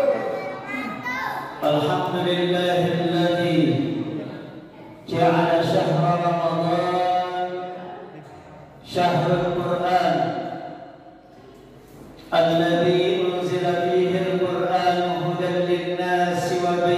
Alhamdulillahilladzi ja'ala syahra Ramadan syahrul Qur'an alladzi unzila fihi al-Qur'an hudan lin-nasi wa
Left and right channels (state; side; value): identical; both; correlation 1.00